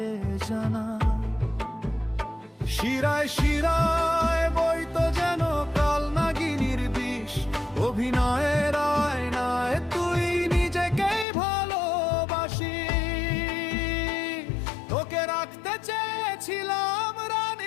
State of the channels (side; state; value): right; drops out; at 11.2 s